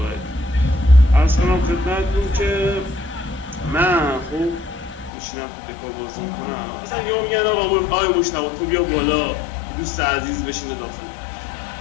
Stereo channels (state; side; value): drops out; right; at 5.1 s